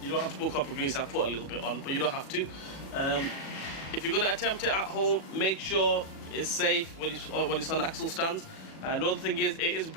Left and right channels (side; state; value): right; late; 36 ms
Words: you don't have to put copper grease. I put a little bit on, but you don't have to. If you're going to attempt it at home, make sure it's safe when it's on axle stands. Another thing is, it is